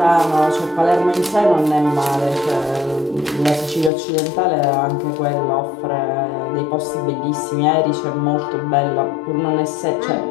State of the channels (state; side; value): drops out; right; at 3.9 s